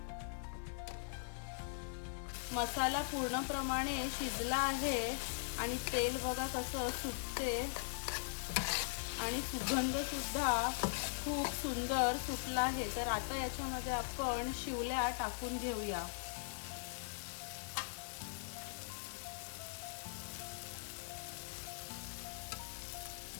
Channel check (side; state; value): right; silent; digital silence